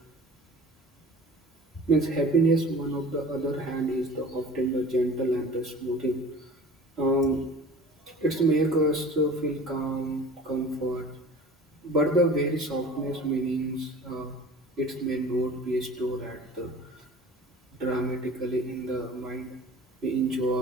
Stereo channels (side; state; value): both; normal; correlation 0.43